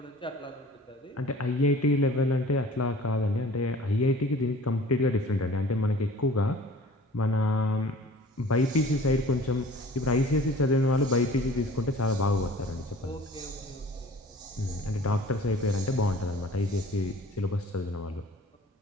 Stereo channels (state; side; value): normal; both; correlation 0.47